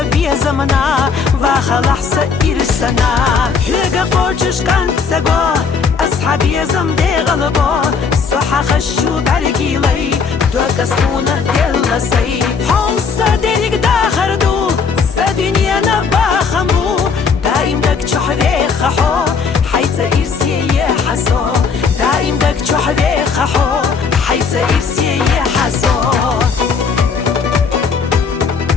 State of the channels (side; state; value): right; quieter; 5.5 dB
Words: زمنا وخلح سإرسنا هيقا قوشش كانت سقو أصحابي زمدي غلبو صحا خشو برقيلي دوك اسمونا دلسي حوصا ديريك داخردو سدنيا نباخمو دايم دك چحوي خحو حيث إرسي يحسو دايم دك چحوي خحو حيث إرسي يحسو